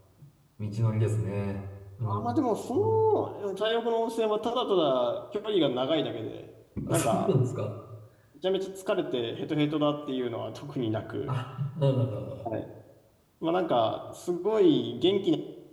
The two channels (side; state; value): both; identical; correlation 1.00